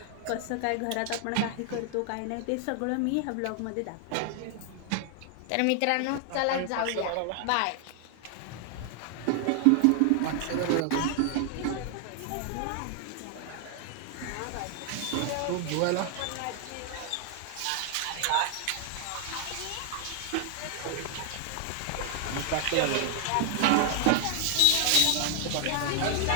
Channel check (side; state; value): both; different; correlation 0.00